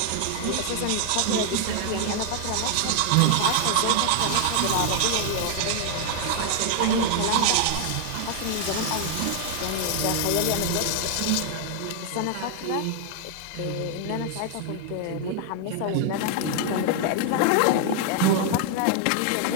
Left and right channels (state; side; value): different; both; correlation 0.00